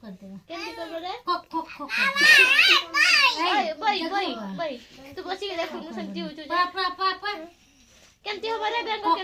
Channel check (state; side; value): identical; both; correlation 1.00